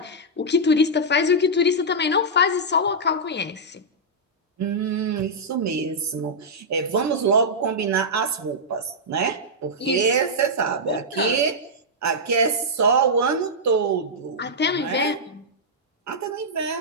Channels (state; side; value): normal; both; correlation -0.09